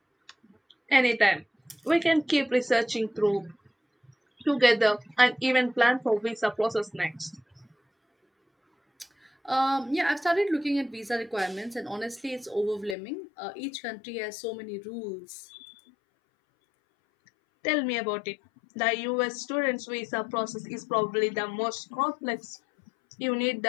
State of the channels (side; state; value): right; drops out; at 13.0 s